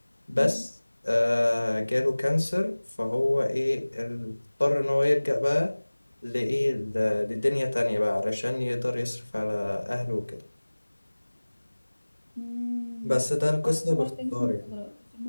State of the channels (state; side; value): inverted; both; correlation -1.00